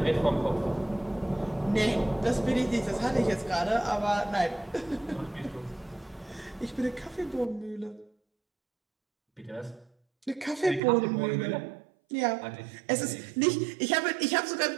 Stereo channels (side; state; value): left; drops out; at 10.8 s